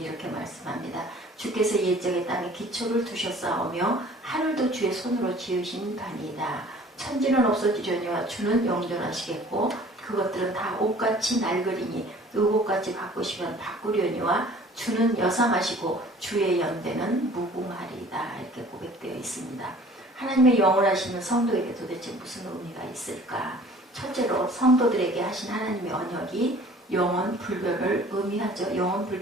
말씀합니다. 주께서 옛적에 땅에 기초를 두셨사오며 하늘도 주의 손으로 지으신 바니이다. 천지는 없어지려니와 주는 영존하시겠고 그것들은 다 옷같이 낡으리니 의복같이 바꾸시면 바꾸려니와 주는 여상하시고 주의 연대는 무궁하리이다. 이렇게 고백되어 있습니다. 하나님의 영원하시는 성도에게 도대체 무슨 의미가 있을까? 첫째로 성도들에게 하신 하나님의 언약이 영원 불변을 의미하죠. 영원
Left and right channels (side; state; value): both; normal; correlation 0.50